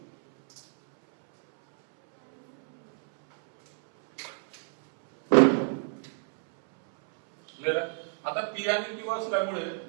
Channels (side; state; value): left; silent; 60 dB below the other